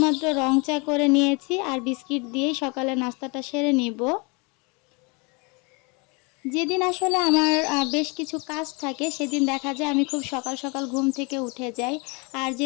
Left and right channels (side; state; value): right; quieter; 30.2 dB